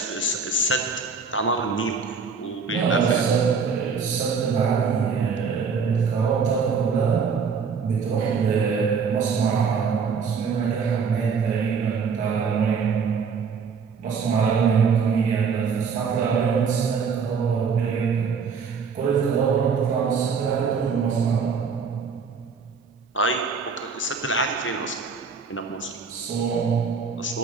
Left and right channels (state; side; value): quieter; left; 5.6 dB